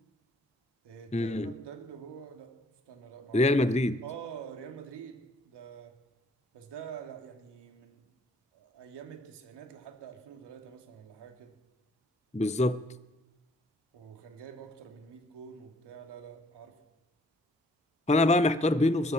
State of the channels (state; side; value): normal; both; correlation 0.63